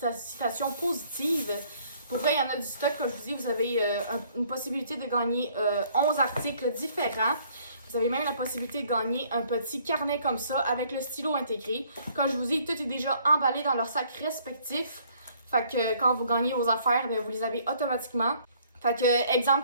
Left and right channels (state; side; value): inverted; both; correlation -0.62